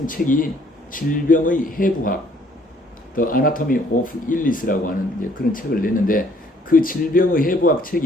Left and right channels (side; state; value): both; normal; correlation 0.62